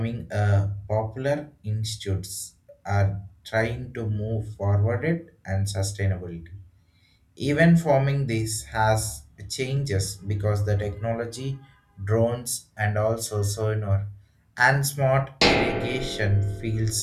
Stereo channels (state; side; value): identical; both; correlation 1.00